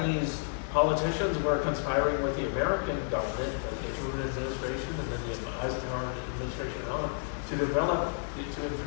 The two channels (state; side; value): silent; right; digital silence